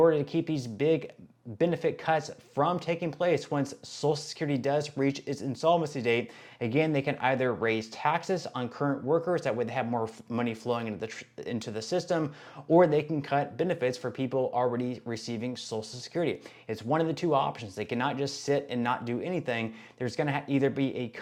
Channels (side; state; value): both; identical; correlation 1.00